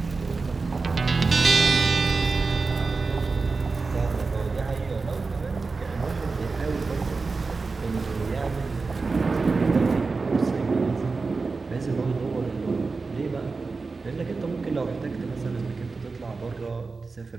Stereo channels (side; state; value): left; quieter; 4.2 dB